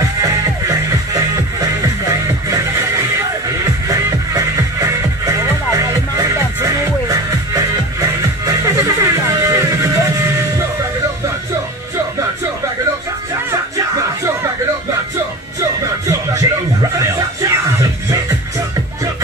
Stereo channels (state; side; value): normal; both; correlation 0.32